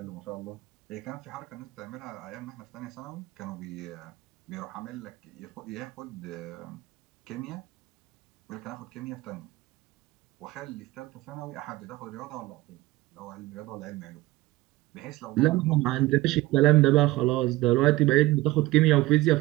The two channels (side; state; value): left; quieter; 18.8 dB